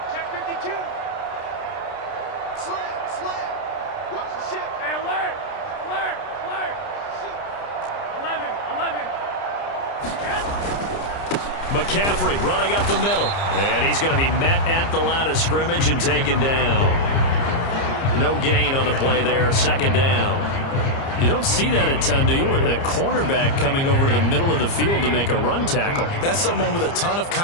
Check 52. Slam. Watch the ship. Hey, alert. 11. McCaffrey running up the middle. And he's going to be met at the line of scrimmage and taken down. No gain on the play there. 2nd down. You don't see that a ton, do you? A cornerback coming over to the middle of the field to make a run tackle. That's someone with a ton of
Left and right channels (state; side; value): late; right; 30 ms